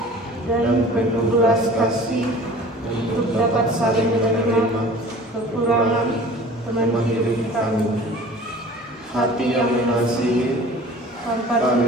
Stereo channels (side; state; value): both; normal; correlation 0.44